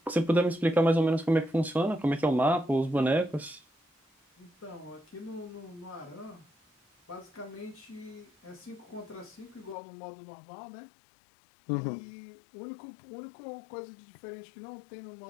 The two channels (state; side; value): drops out; right; at 9.8 s